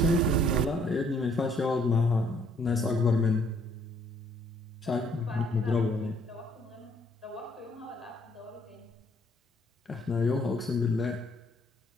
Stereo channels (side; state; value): both; normal; correlation 0.64